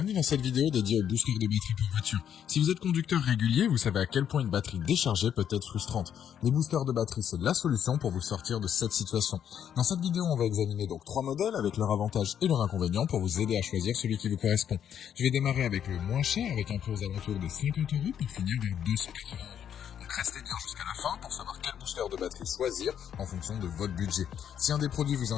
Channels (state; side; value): quieter; right; 9.1 dB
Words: dans cette vidéo dédiée au booster de batterie pour voiture. Si vous êtes conducteur régulier, vous savez à quel point une batterie déchargée peut être frustrante. Les boosters de batterie, c'est la solution pour vous sortir de cette situation. Dans cette vidéo, on va examiner donc 3 modèles avec leurs avantages et leurs inconvénients pour vous aider à choisir celui qui vous correspond. Je vais démarrer avec le moins cher, avec un prix aux alentours de 50 € pour finir vers 280 €. Donc restez bien jusqu'à la fin pour savoir quel booster de batterie choisir en fonction de votre budget. Si un des produits vous